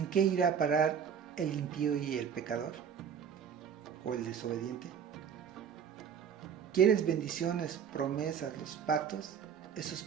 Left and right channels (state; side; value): quieter; left; 7.6 dB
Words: qué irá a parar el impío y el pecador? ¿O el desobediente? ¿Quieres bendiciones, promesas, los pactos? Eso es